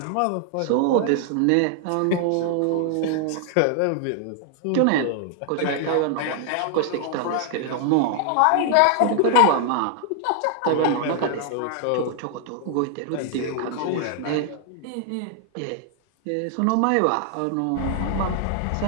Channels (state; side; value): different; both; correlation 0.00